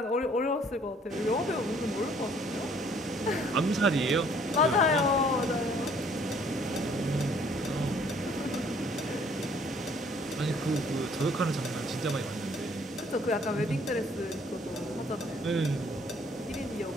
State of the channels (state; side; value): normal; both; correlation 0.60